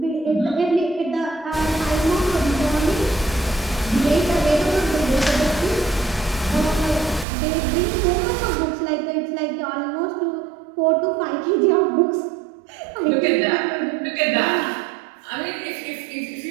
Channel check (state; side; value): drops out; left; at 7.2 s